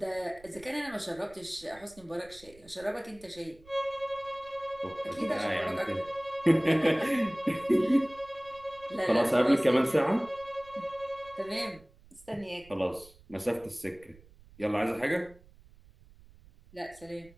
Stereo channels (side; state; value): right; noise; rumble, 24 dB below the sound